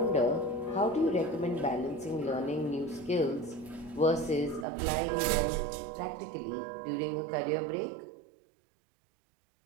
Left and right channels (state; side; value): drops out; left; at 4.7 s